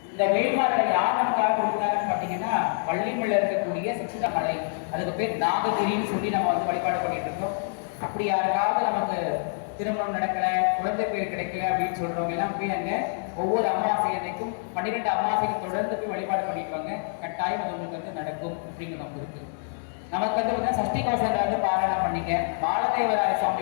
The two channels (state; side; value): silent; right; digital silence